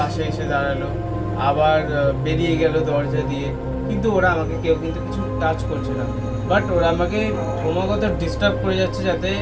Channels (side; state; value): both; identical; correlation 1.00